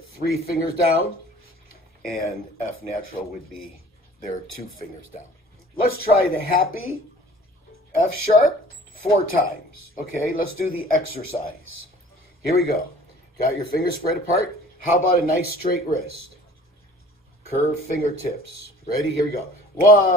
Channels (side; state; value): both; normal; correlation 0.48